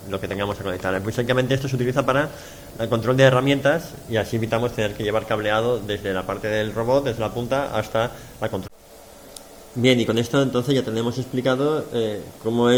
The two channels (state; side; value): identical; both; correlation 1.00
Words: que tengamos que conectar. Básicamente esto se utiliza para el control de herramientas, y así evitamos tener que llevar cableado desde la parte del robot, desde la punta hasta la control. Bien, y con esto entonces ya tenemos explicado cómo